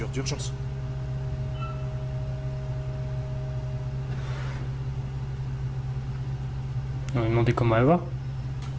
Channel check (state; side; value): identical; both; correlation 1.00